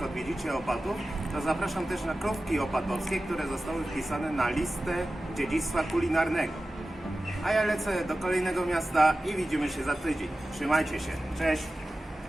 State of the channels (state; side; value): normal; both; correlation 0.95